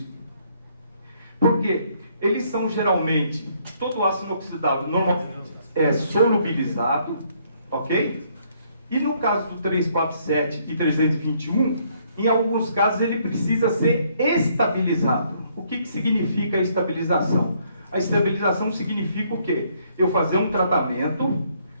Por quê? eles são geralmente, todo ácido inoxidável normalmente é solubilizado, ok? E no caso do 347 e 321, em alguns casos ele precisa ser estabilizado. O que significa a estabilização? A estabilização significa o quê? Eu fazer um tratamento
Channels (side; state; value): both; inverted; correlation -0.68